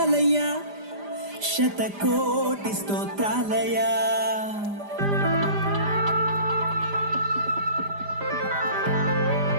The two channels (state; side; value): late; left; 5.0 ms